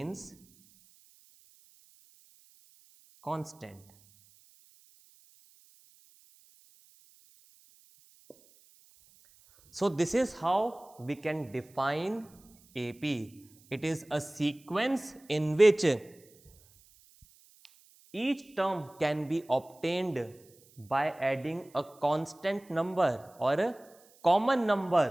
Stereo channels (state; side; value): noise; right; hiss, 28 dB below the sound